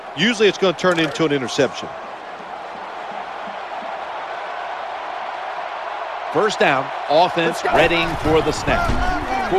usually it's going to turn into an interception. First down, offense readying for the snap.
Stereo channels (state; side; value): identical; both; correlation 1.00